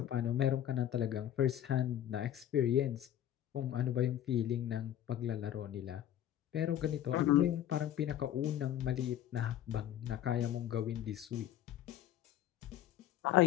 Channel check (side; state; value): right; quieter; 11.4 dB